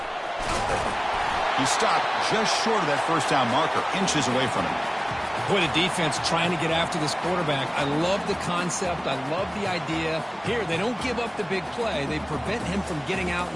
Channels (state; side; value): identical; both; correlation 1.00